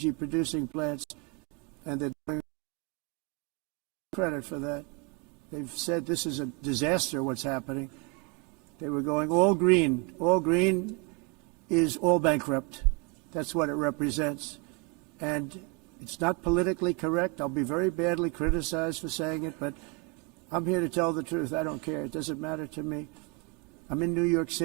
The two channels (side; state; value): left; quieter; 29.6 dB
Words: plants, and they're doing credit for that. They've said this is a disaster, what's happening. They were going all green. All green is all bankrupt. That's what it represents. And it's not politically correct. I'll be very badly criticized for saying it, but I'm here to tell the truth. I don't care. It doesn't matter to me. I'm in New York